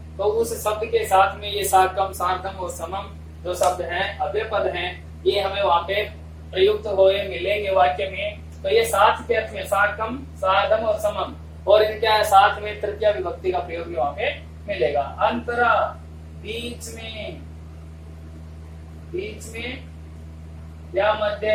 तो उस शब्द के साथ में ये साकम, सार्धम और समम जो शब्द हैं, अव्यय पद हैं, ये हमें वहां पे प्रयुक्त हुए मिलेंगे वाक्य में। तो ये साथ के अर्थ में साकम, सार्धम और समम, और इनके साथ में तृतीया विभक्ति का प्रयोग भी वहां पे मिलेगा। अंतरा, बीच में, बीच में या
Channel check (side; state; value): both; identical; correlation 1.00